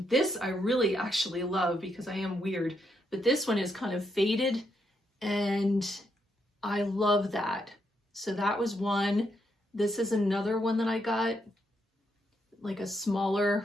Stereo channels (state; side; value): normal; both; correlation 0.79